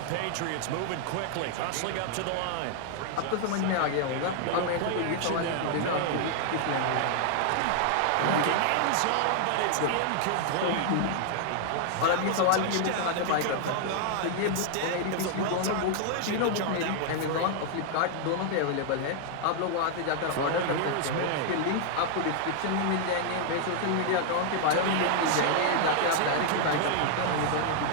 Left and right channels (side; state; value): both; different; correlation 0.00